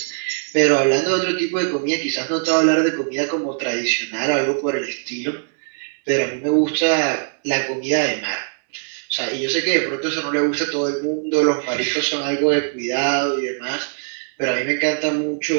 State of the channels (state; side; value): silent; left; digital silence